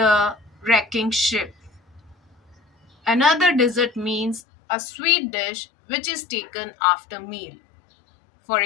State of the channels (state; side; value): drops out; right; at 4.4 s